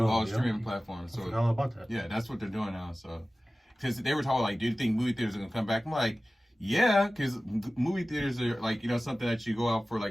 all streaming platforms. So I forgot all about that. Yeah, that's what they're doing now. So because they were talking like, do you think movie theaters are gonna come back? I'm like, yeah, because movie theaters are like, you know, something that you go out for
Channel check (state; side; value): normal; both; correlation 0.96